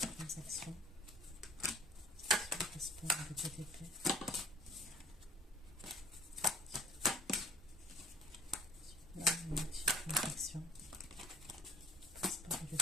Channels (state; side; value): normal; both; correlation 0.55